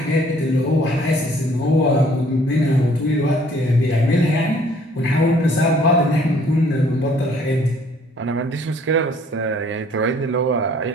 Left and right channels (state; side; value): normal; both; correlation 0.59